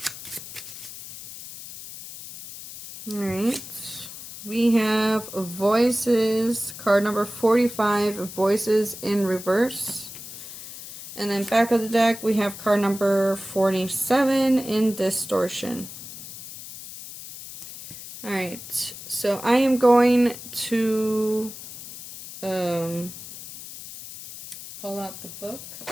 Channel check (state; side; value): noise; left; hiss, 13 dB below the sound